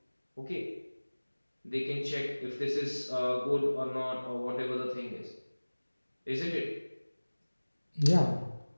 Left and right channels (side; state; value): both; inverted; correlation -1.00